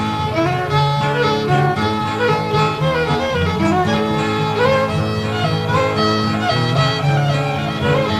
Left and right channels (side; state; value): both; identical; correlation 1.00